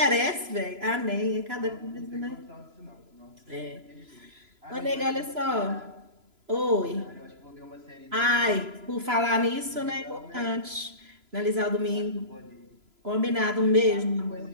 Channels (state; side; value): late; left; 3.0 ms